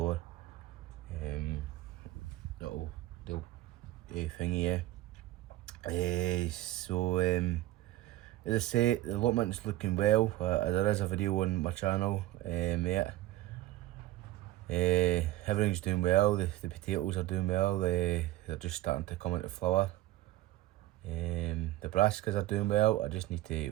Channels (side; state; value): left; quieter; 16.2 dB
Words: they'll thingy, yeah. So as I say, the allotment's looking well. There is a video on my channel, everything's doing well. The potatoes are doing well. They're just starting to come into flower. The brassicas are doing well. I just need to